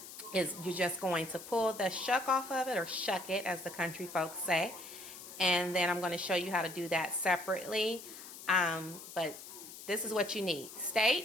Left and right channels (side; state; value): left; noise; hiss, 13 dB below the sound